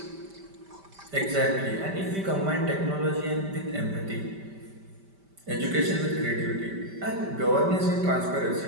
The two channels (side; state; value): left; late; 5.1 ms